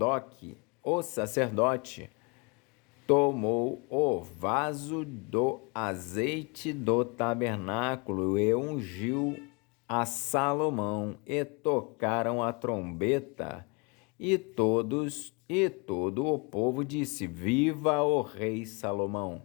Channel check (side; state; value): right; quieter; 31.1 dB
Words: o sacerdote, tomou o vaso do azeite do tabernáculo e ungiu a Salomão, e tocaram a trombeta, e todo o povo disse: Viva o rei Salomão!